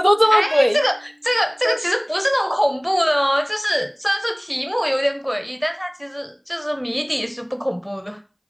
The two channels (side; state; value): both; identical; correlation 1.00